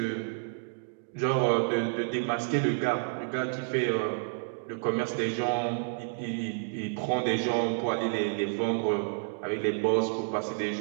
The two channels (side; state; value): left; silent; digital silence